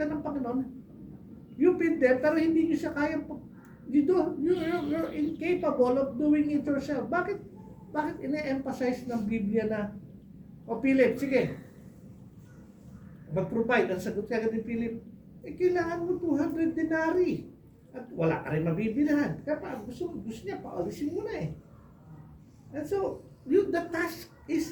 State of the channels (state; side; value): identical; both; correlation 1.00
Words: ng Panginoon, you feed them, pero hindi nyo siya kaya, you're incapable of doing it yourself. Bakit ine-emphasize ng Biblia na, Philip, sige, mag-provide, ang sagot ka ni Philip, kailangan mo 200 denari. At wala ka rin mabibilihan. Kaya gusto niya, paalisin mo na eh. And so, the task